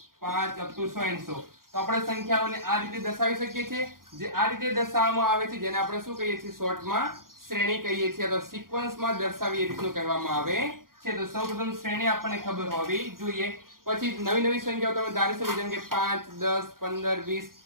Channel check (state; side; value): late; left; 0.91 ms